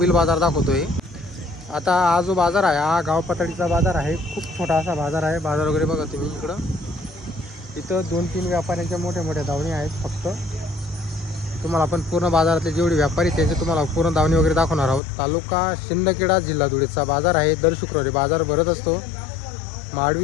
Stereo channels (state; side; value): drops out; right; at 15.0 s